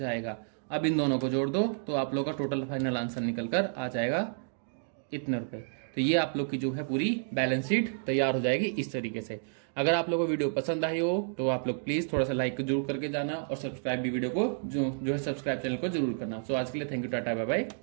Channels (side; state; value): left; silent; digital silence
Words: अब इन दोनों को जोड़ दो तो आप लोग का टोटल फाइनल आंसर निकल कर आ जाएगा इतने रुपए। तो ये आप लोग की जो है पूरी बैलेंस शीट तैयार हो जाएगी इस तरीके से। अगर आप लोगों को वीडियो पसंद आई हो तो आप लोग प्लीज थोड़ा सा लाइक जरूर करके जाना और सब्सक्राइब भी वीडियो को जो है सब्सक्राइब चैनल को जरूर करना। सो आज के लिए thank you, tata bye bye,